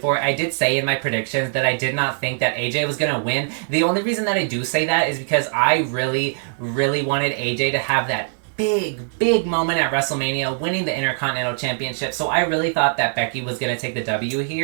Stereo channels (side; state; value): left; silent; digital silence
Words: for. I did say in my predictions that I did not think that AJ was going to win. The only reason that I do say that is because I really, really wanted AJ to have that big moment at WrestleMania, winning the Intercontinental Championship. So I really thought that Becky was going to take the W